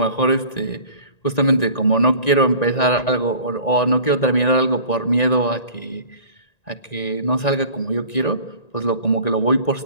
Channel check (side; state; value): right; late; 1.9 ms